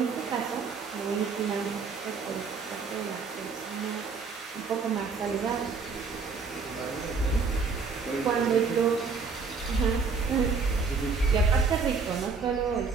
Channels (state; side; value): quieter; left; 4.9 dB